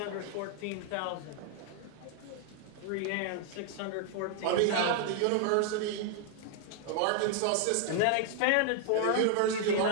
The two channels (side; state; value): both; different; correlation 0.00